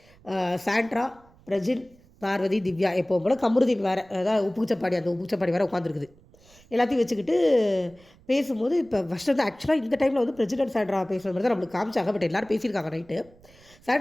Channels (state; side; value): noise; right; rumble, 27 dB below the sound